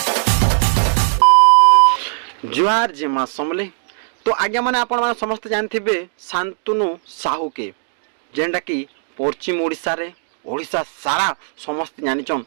जे माँ समले तो आज्ञा मैंने आपण मैंने समस्त जानते शांतनु साहू के जेनटा कि पश्चिम ओडिशा रे ओडिशा सारा समस्त जानिछन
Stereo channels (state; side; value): silent; left; digital silence